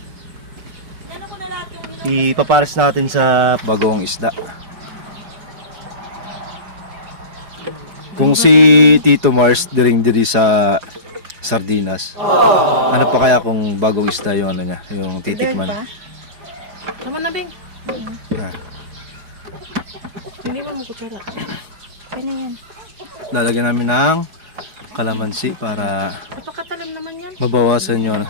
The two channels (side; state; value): left; late; 4.8 ms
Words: Nano ko na lahat yung Ipapares natin sa bagong isda. Kung si Tito Mars diring-diri sa sardinas. Ano pa kaya kung bagong isda yung ano niya, yung titikman? Tama na, Beng. Yan. Hindi mo kutsara. Ano yan? Lalagyan namin ng kalamansi para Napakatalim naman yan. mabawasan yung